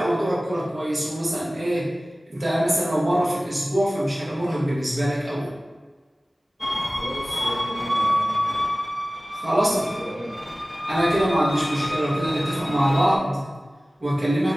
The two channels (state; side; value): normal; both; correlation 0.97